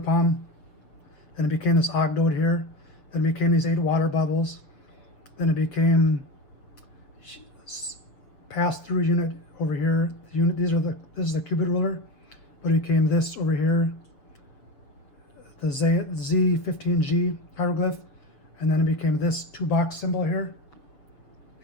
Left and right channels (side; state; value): right; late; 6.9 ms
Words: then it became this ogdoad here, then it became these 8 water bubbles, then it became pass-through unit over here. This is the Cubit ruler, but it became this over here, the Z15G hieroglyph, and then it became this 2-box symbol here,